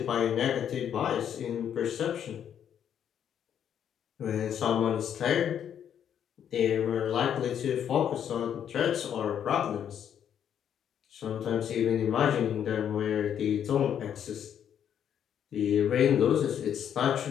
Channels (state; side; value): quieter; right; 9.1 dB